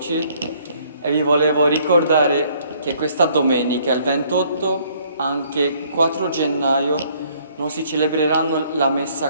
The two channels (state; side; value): inverted; both; correlation -0.63